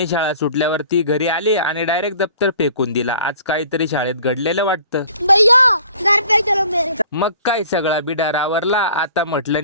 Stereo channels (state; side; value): inverted; both; correlation -0.51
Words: शाळा सुटल्यावर ती घरी आली आणि डायरेक्ट दप्तर फेकून दिला. आज काहीतरी शाळेत घडलेलं वाटतं. भैया घर पे चलो मेरे. मग काय सगळा बिडार आवरला. आता